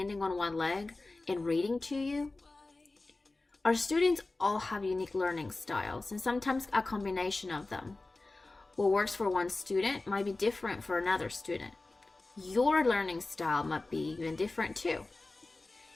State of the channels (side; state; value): right; quieter; 3.2 dB